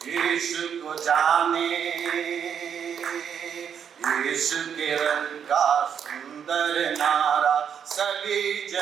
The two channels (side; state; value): left; quieter; 7.9 dB